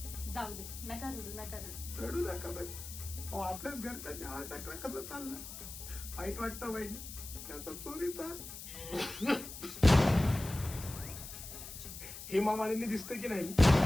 जाऊ दे, नका रडू, नका रडू. रडू नका बाई. अहो, आपल्याच घरच्यांनी आर टाकला, कसं चाललं? वाईट वाटतं बहिणी, त्याचा चोरीचा. हेमा मालिनी दिसतं की नाही?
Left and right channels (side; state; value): left; noise; hiss, 11 dB below the sound